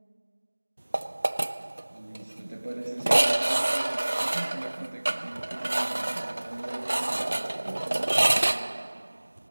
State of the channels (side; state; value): both; inverted; correlation -1.00